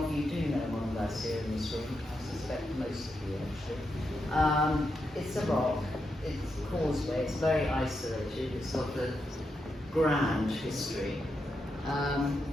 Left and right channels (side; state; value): both; normal; correlation 0.84